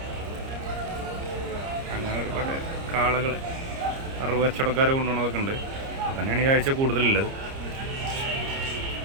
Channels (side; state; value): left; late; 30 ms